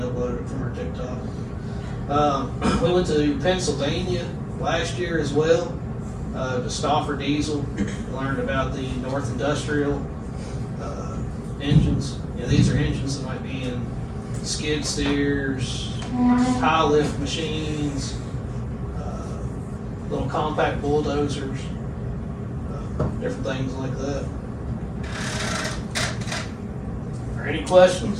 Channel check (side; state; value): both; identical; correlation 1.00